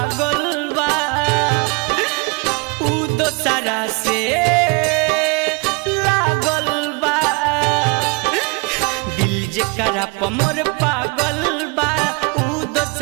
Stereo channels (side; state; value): left; quieter; 29.4 dB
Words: बा उ दोसरा से लागल बा। दिल जेकरा प मोर पागल बा उ